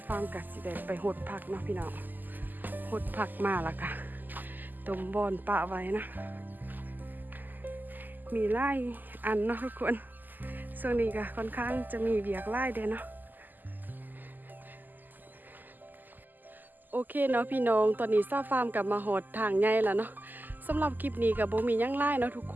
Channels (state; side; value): late; left; 0.086 ms